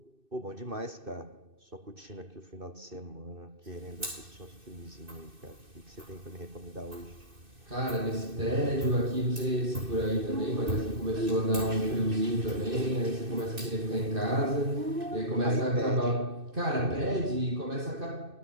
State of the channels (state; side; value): late; left; 2.6 ms